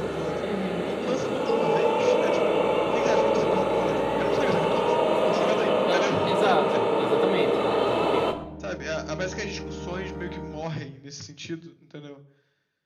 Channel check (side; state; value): both; identical; correlation 1.00